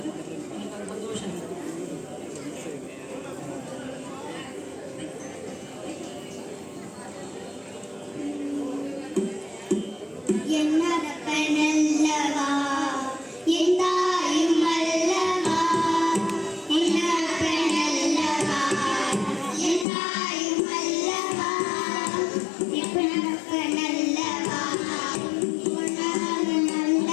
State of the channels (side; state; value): right; drops out; at 19.9 s